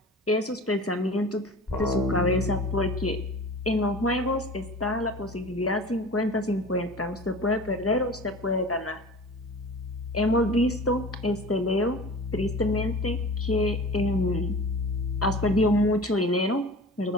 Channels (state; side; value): normal; both; correlation 0.38